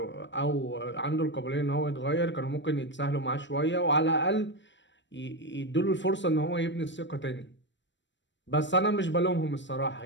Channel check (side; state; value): right; late; 0.53 ms